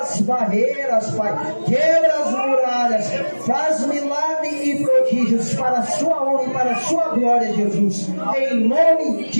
barreiras, Pai. Quebra as muralhas. Faz milagres e prodígios para a sua honra e para a sua glória, Jesus. Em nome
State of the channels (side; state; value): both; inverted; correlation -1.00